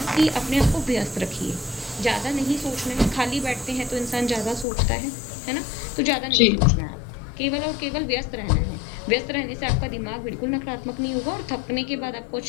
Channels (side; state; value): right; drops out; at 4.7 s